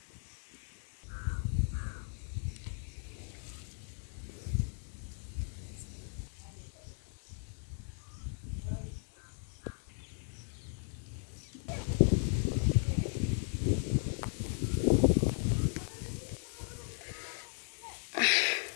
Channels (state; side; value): silent; right; 53 dB below the other